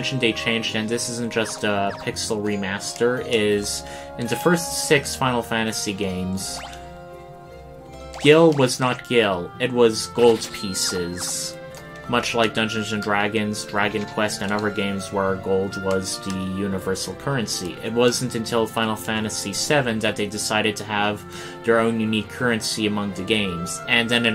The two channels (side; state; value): both; identical; correlation 1.00